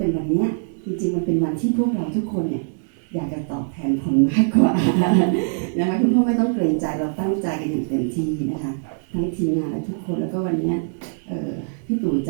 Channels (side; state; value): left; silent; 64 dB below the other